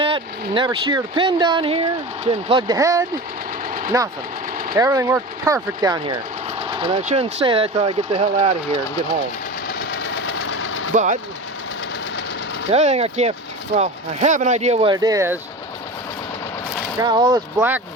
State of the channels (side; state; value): both; normal; correlation 0.30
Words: never sheared a pin down here, didn't plug the head, nothing. Everything worked perfect down here. And I shouldn't say that till I get the hell out of here and get home. But the other thing I can't, well, I have an idea what it is. Got all this black